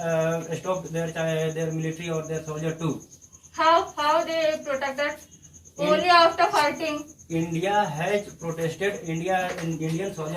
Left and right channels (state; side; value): identical; both; correlation 1.00